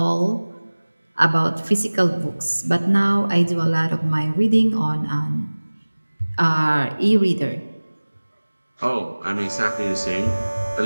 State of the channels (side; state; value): both; inverted; correlation -1.00